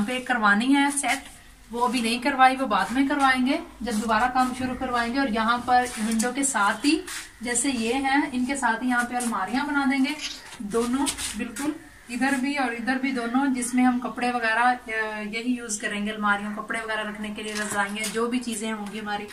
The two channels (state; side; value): identical; both; correlation 1.00